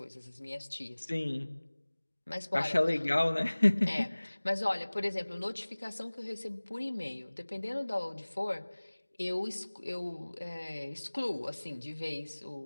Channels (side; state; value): both; inverted; correlation -1.00